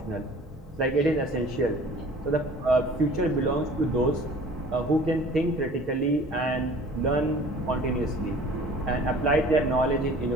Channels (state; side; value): normal; both; correlation 0.47